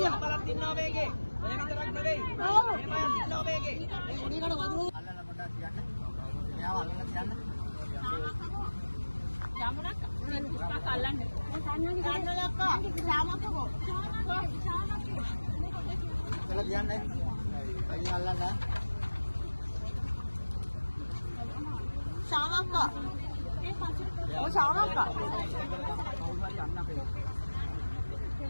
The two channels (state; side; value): inverted; both; correlation -1.00